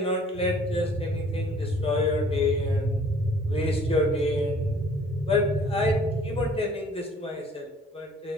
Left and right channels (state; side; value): normal; both; correlation 0.55